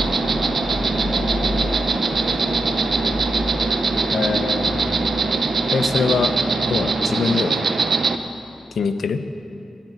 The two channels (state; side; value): normal; both; correlation 0.85